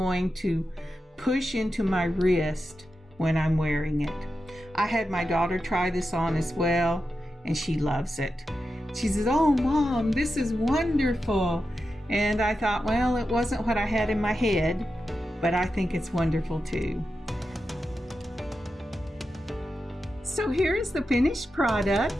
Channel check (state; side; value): normal; both; correlation 0.90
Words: to push into my wrist when I'm wearing it. I had my daughter try this on as well and she loves it. She says, "Oh, Mom, this is wonderful." And I thought, well, it wasn't what I had in my head, but I think it's wonderful too. So here is the finished